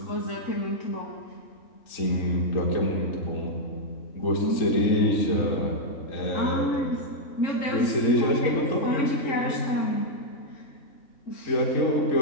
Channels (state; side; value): late; right; 3.6 ms